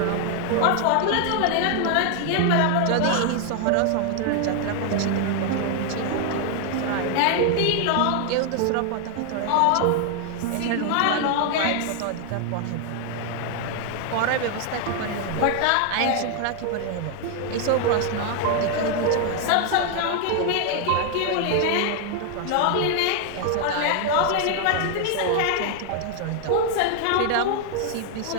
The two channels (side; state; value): both; different; correlation 0.00